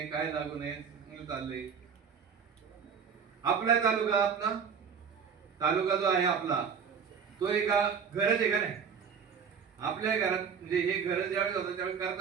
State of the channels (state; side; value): quieter; left; 6.7 dB